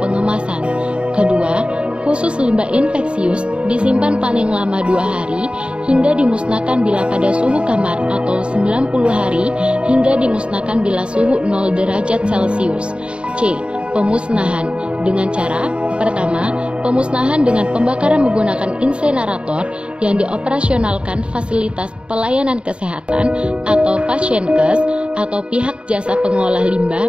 pengemasan. Kedua, khusus limbah infeksius disimpan paling lama 2 hari hingga dimusnahkan bila pada suhu kamar atau 90 hari hingga dimusnahkan bila suhu 0 derajat Celcius. C. Pemusnahan dengan cara, pertama, pemusnahan dengan pembakaran menggunakan insenerator yang dioperasionalkan fasilitas pelayanan kesehatan atau Pasienkes atau pihak jasa pengolah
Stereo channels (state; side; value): late; left; 0.056 ms